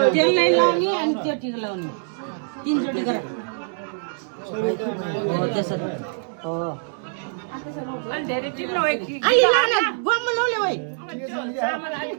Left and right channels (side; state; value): left; silent; 62 dB below the other